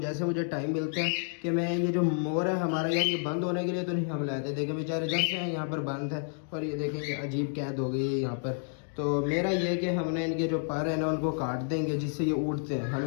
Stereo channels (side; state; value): right; silent; 56 dB below the other